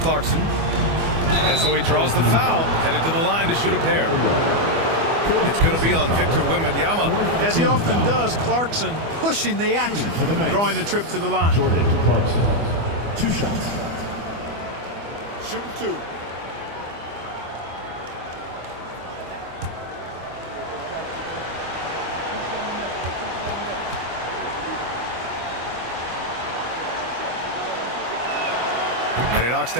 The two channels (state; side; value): late; left; 24 ms